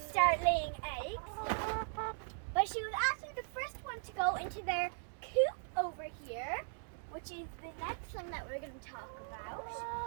start laying eggs. But she was actually the first one to go into their coop over here, which is the next thing that we're going to talk about.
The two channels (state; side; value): silent; left; digital silence